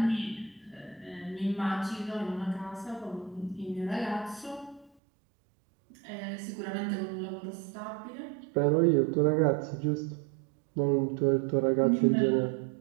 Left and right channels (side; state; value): left; drops out; at 4.9 s